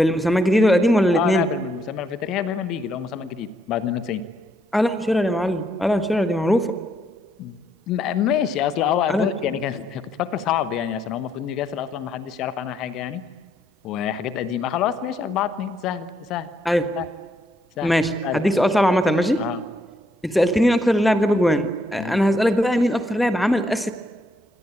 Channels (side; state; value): both; normal; correlation 0.74